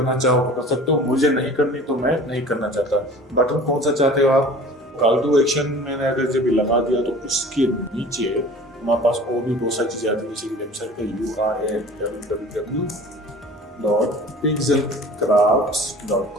चाहो तो कर सकते हो, मुझे नहीं करनी तो मैं नहीं करना चाहता। बटन कौन सा चाहते हो आप, कॉल टू एक्शन मैंने अगर जब लगा दिया तो उसके नीचे हमारे पास और भी बहुत सारी चीजें आती है, जैसे कि वेबसाइट का url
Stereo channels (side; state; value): both; normal; correlation 0.43